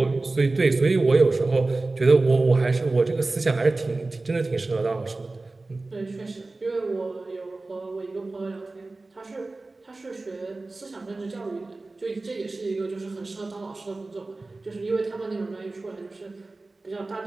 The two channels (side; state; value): left; quieter; 3.3 dB